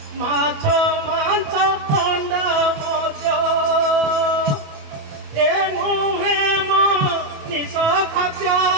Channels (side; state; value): left; late; 27 ms